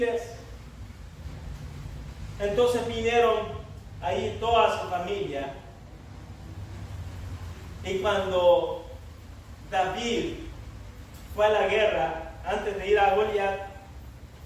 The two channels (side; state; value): both; identical; correlation 1.00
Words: Entonces vinieron ahí toda su familia, y cuando David fue a la guerra antes de ir a Goliat,